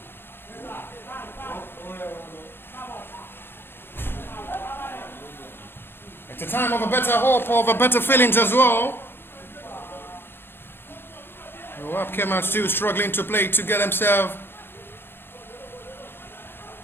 It's a time of a better hope, of a better feelings as well. Wabkem are still struggling to play to get himself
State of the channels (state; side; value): late; right; 0.10 ms